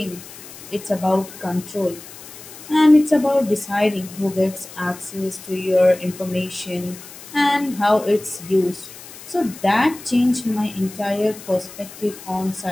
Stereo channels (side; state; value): left; noise; hiss, 16 dB below the sound